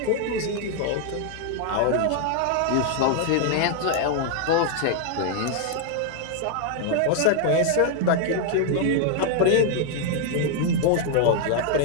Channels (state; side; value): different; both; correlation 0.00